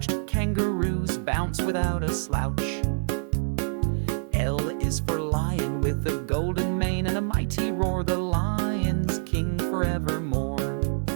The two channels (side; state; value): left; silent; 61 dB below the other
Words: Kangaroos bounce without a slouch. L is for lion, with a golden mane and a mighty roar. The lion's king forevermore.